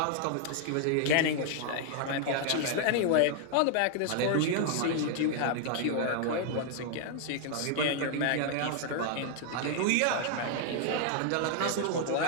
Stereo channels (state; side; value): different; both; correlation 0.00